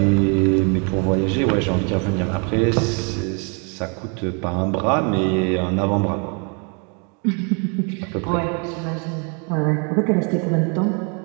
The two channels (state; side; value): quieter; left; 35.8 dB